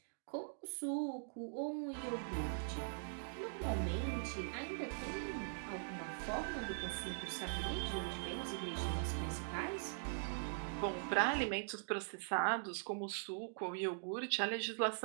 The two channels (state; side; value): silent; left; digital silence